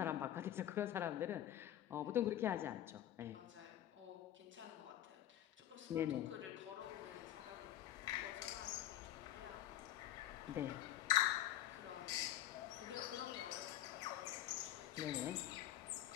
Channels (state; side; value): quieter; right; 12.5 dB